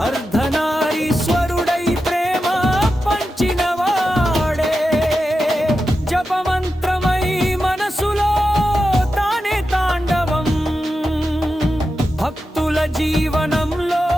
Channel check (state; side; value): normal; both; correlation 0.90